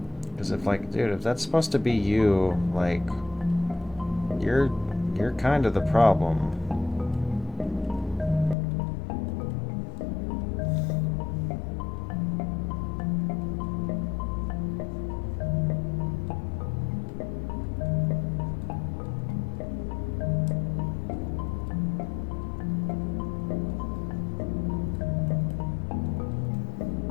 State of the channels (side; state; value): right; drops out; at 8.6 s